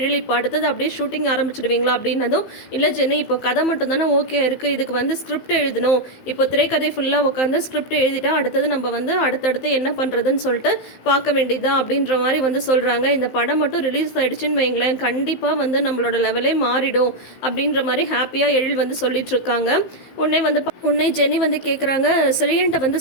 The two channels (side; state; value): right; late; 15 ms